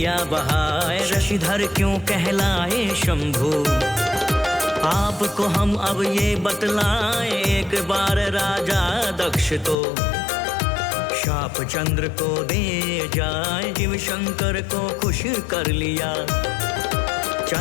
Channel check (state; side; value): drops out; right; at 9.8 s